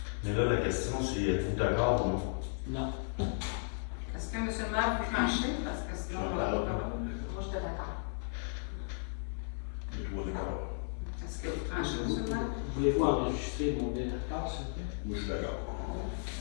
Mais là, la question, c'est êtes-vous d'accord ou non? Non. Est-ce que M. le maire peut trancher? Parce que sinon, on va pas parler. Moi, j'étais d'accord. Les trois d'accord. Est-ce que vous tranchez, M. le maire? Voulez-vous enregistrer mon désaccord, s'il vous plaît? Moi, je suis d'accord.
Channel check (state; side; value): silent; right; 55 dB below the other